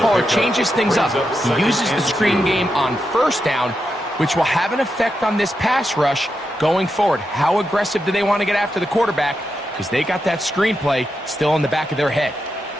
changes things up. He uses the screen game on 1st down, which will have an effect on this pass rush going forward. How aggressive do they want to get after the quarterback? Because they got that screen play still in the back of their head.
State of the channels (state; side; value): normal; both; correlation 0.86